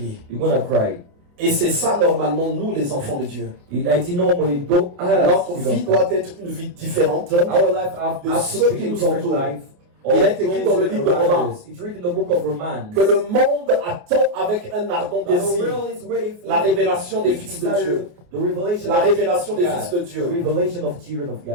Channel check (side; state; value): left; late; 28 ms